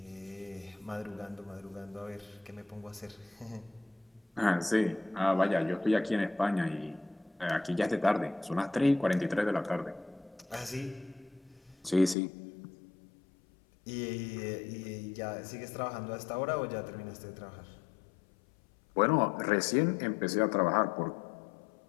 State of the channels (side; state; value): right; drops out; at 12.2 s